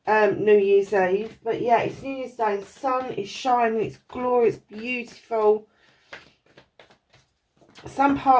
New Year's Eve, but yeah, it's New Year's Day. The sun is shining, it's glorious, beautiful. Some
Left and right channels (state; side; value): identical; both; correlation 1.00